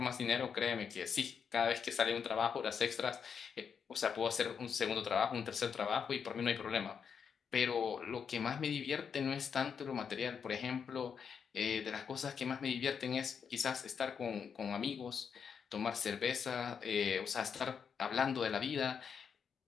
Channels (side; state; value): right; quieter; 6.8 dB